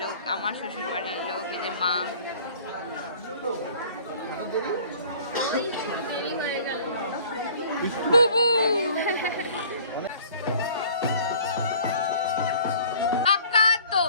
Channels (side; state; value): both; inverted; correlation -0.50